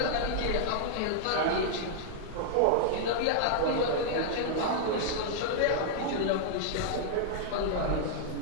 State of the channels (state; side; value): different; both; correlation -0.01